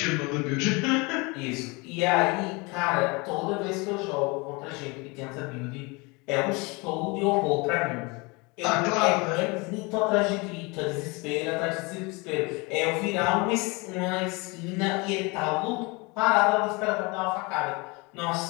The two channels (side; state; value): right; quieter; 27.3 dB